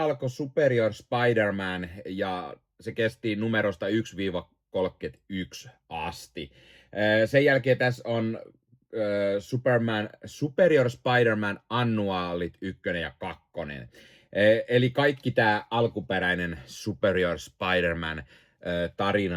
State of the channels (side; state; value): both; identical; correlation 1.00